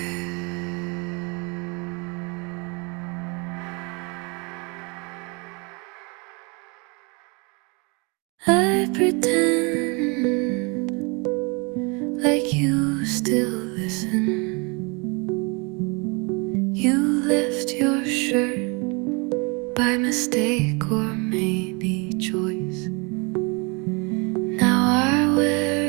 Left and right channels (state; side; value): quieter; left; 30.5 dB